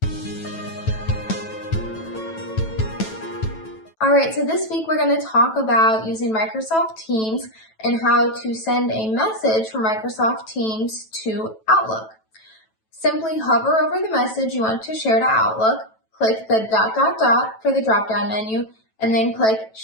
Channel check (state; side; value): late; right; 9.1 ms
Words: Alright, so this week we're going to talk about using Microsoft Teams and how to send a message from Microsoft Teams to Outlook. Simply hover over the message you want to share to Outlook, click the ... for the drop-down menu, and then click